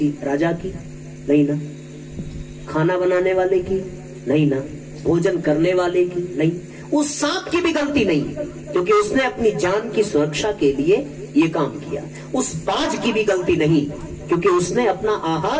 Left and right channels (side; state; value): both; identical; correlation 1.00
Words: राजा की? नहीं ना। खाना बनाने वाले की? नहीं ना। भोजन करने वाले की? नहीं। उस सांप की भी गलती नहीं, क्योंकि उसने अपनी जान की सुरक्षा के लिए ये काम किया। उस बाज की भी गलती नहीं, क्योंकि उसने अपना